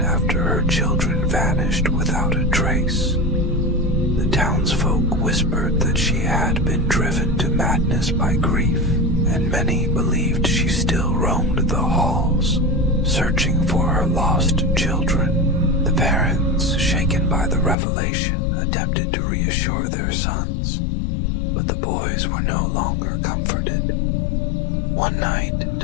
after her children vanished without a trace. The townsfolk whispered that she had been driven to madness by grief, and many believed she still roamed the halls, searching for her lost children. The parents, shaken by the revelation, attempted to reassure their sons, but the boys were no longer comforted. One night,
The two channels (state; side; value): drops out; right; at 17.8 s